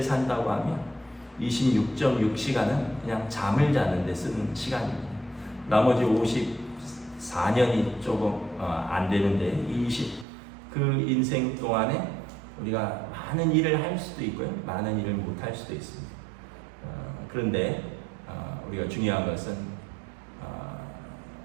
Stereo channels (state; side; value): drops out; left; at 10.2 s